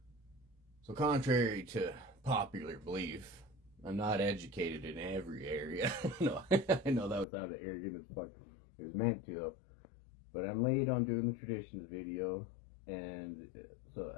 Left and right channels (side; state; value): right; drops out; at 7.2 s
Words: So contrary to popular belief, I'm not educated in every area. No, I know that sounded arrogant as fuck. It was meant to though. But I'm late on doing the traditions video, and